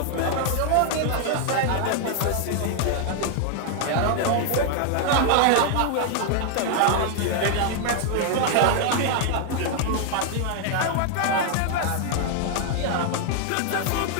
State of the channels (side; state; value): both; different; correlation 0.00